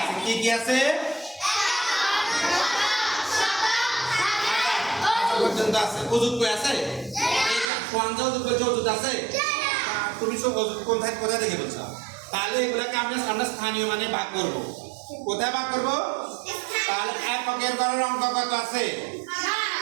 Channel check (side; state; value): left; drops out; at 7.7 s